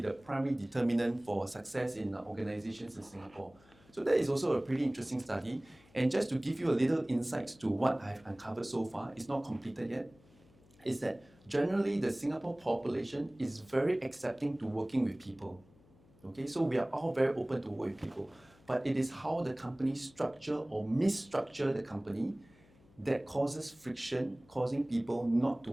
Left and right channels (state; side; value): noise; left; hum, 28 dB below the sound